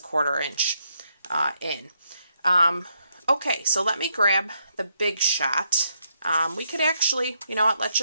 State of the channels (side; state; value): both; inverted; correlation -0.77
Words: inch in. Okay, so let me grab the Big Shot. We could actually, let's